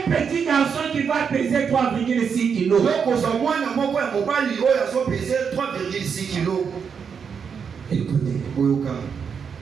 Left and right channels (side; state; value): left; quieter; 6.6 dB